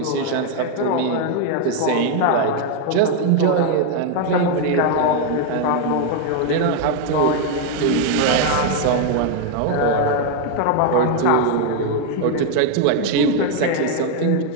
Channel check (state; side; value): different; both; correlation 0.01